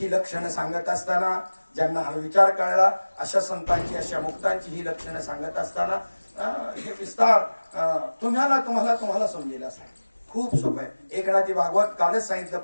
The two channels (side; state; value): both; inverted; correlation -1.00